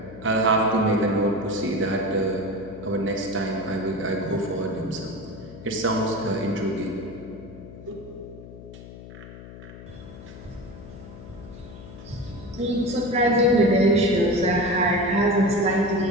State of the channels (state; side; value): noise; left; hum, 15 dB below the sound